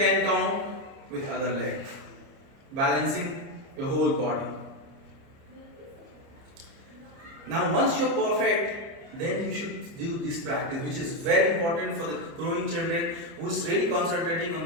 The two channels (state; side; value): late; left; 30 ms